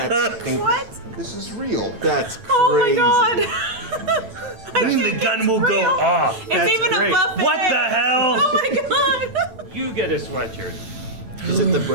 This is real. That's crazy. Oh my god. I mean, the gun will go off. It's That's even great. a buffet. What the hell? Oh my god. you get a sweatshirt. Is it the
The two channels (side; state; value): left; late; 9.0 ms